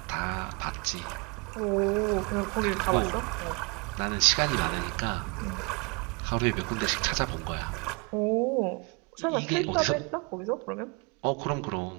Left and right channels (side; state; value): left; quieter; 30.7 dB